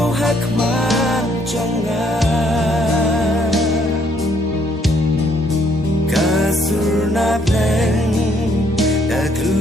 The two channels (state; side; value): normal; both; correlation 0.67